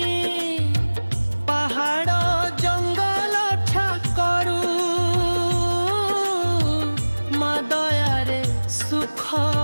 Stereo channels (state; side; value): inverted; both; correlation -1.00